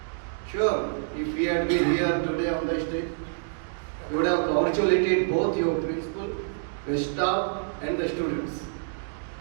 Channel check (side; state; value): left; silent; digital silence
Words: Sure, if we had been here today on the stage, you would have congratulated both your principal, your staff and the students.